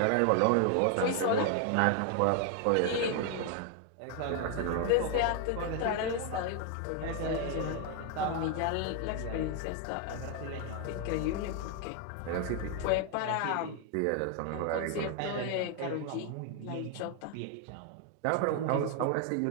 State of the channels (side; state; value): both; different; correlation 0.01